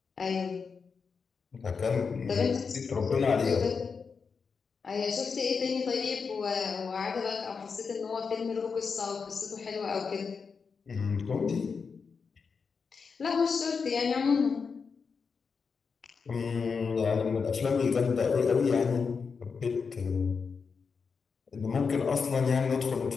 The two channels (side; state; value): right; quieter; 5.4 dB